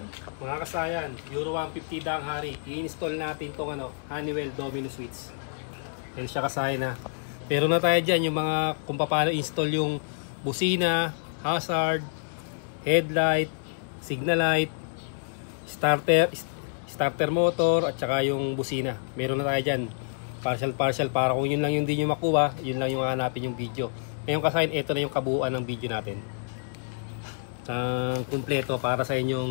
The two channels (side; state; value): right; silent; digital silence